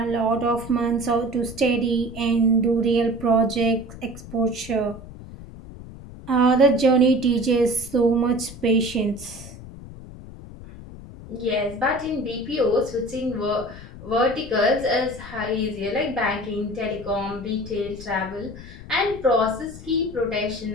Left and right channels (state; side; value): noise; left; rumble, 15 dB below the sound